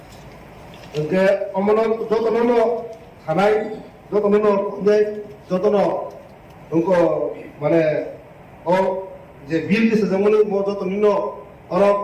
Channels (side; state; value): both; identical; correlation 1.00